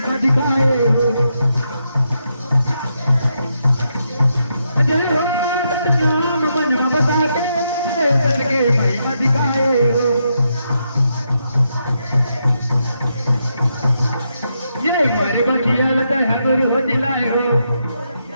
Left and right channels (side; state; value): both; inverted; correlation -0.82